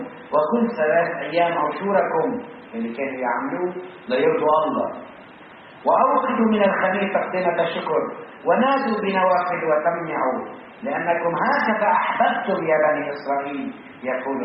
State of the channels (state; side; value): identical; both; correlation 1.00